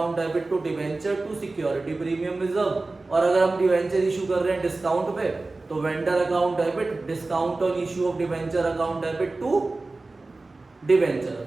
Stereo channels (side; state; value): left; quieter; 3.3 dB